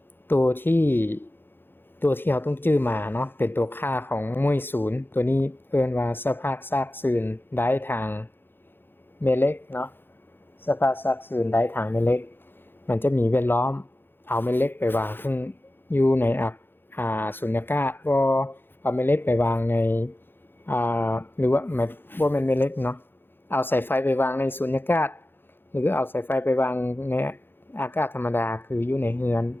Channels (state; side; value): late; right; 0.10 ms